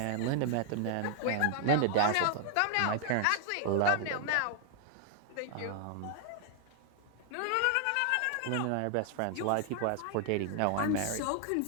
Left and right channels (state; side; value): different; both; correlation 0.00